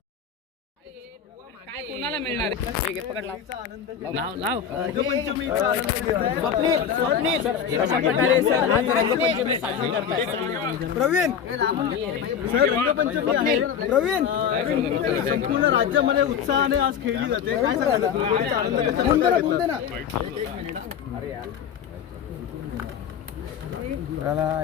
काय कोणाला मिळणार आहे? पकड लाव लाव. स्वप्नील कशा प्रकारे सर आज रंगपंचमी साजरी करताय? प्रवीण सर रंगपंचमी प्रवीण संपूर्ण राज्यामध्ये उत्साहाने आज खेळली जाते. काय सांगाल? बोल दे ना.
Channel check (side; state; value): right; quieter; 7.8 dB